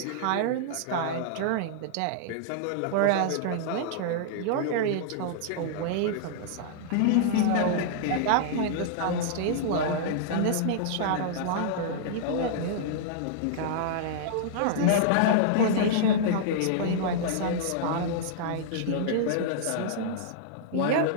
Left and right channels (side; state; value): both; different; correlation -0.01